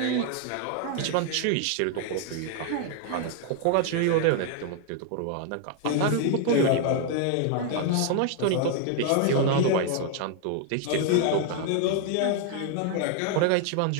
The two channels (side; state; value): both; different; correlation 0.00